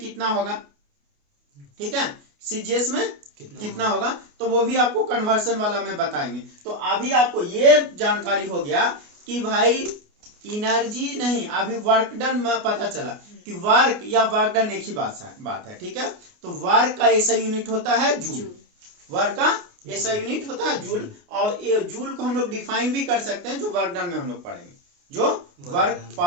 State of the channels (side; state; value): left; late; 28 ms